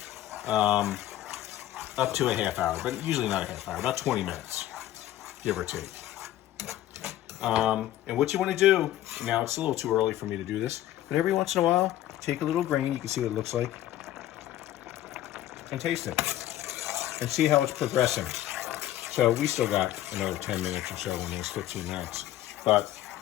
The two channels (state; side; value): quieter; right; 13.6 dB